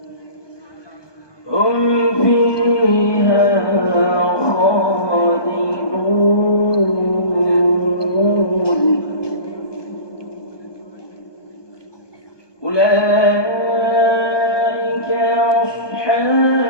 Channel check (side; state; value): right; late; 1.2 ms